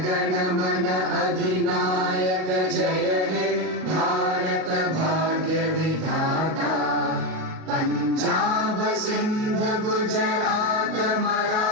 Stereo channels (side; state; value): left; late; 38 ms